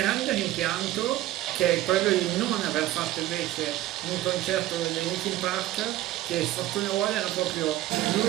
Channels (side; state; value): left; quieter; 15.1 dB